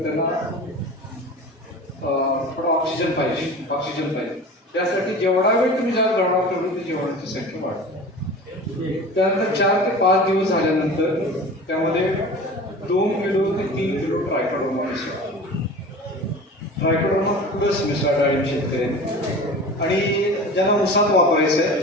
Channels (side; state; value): both; normal; correlation 0.37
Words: त्यांना थोडा ऑक्सिजन पाहिजे. त्यासाठी जेवढा वेळ तुम्ही ज्यात ढवळा तेवढी ती जीवाणूची संख्या वाढते. त्यानंतर 4 ते 5 दिवस झाल्यानंतर त्यामध्ये 2 किलो ते 3 किलो ट्रायकोडर्मा मिसळा. ट्रायकोडर्मा प्लस मिसळा डाळिंब शेतकऱ्यांनी. आणि ज्यांना उसात वापरायचं आहे,